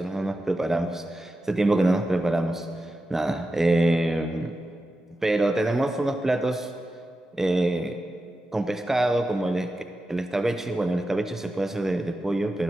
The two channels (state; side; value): normal; both; correlation 0.91